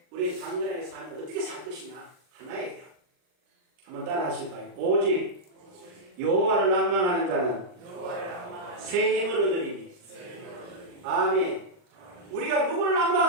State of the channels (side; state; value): left; late; 39 ms